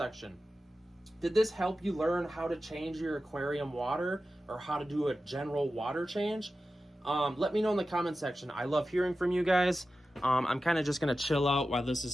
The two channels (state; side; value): normal; both; correlation 0.93